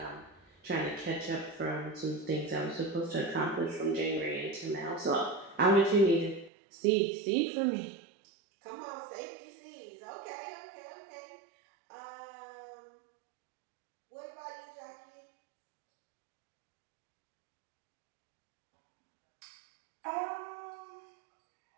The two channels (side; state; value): left; drops out; at 6.5 s